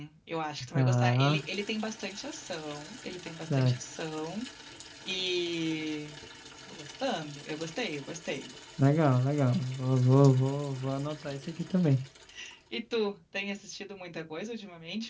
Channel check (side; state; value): both; identical; correlation 1.00